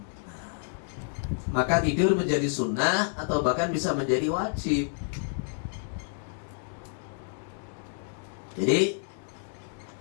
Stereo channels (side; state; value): right; silent; digital silence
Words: Maka tidur menjadi sunnah atau bahkan bisa menjadi wajib. Jadi